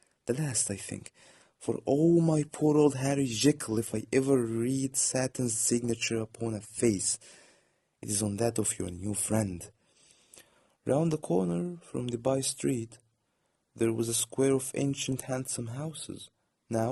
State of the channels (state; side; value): identical; both; correlation 1.00